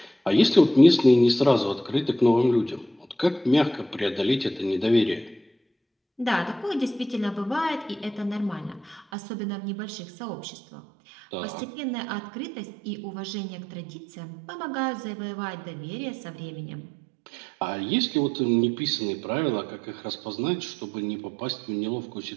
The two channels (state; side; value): drops out; left; at 9.1 s